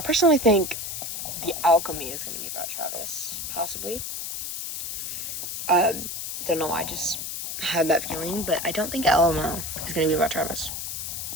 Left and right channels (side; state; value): left; noise; hiss, 5 dB below the sound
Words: personally think The Alchemy is gonna be about Travis, possibly. Don't know why, I just had that feeling, but I don't think LOL is gonna be about Travis.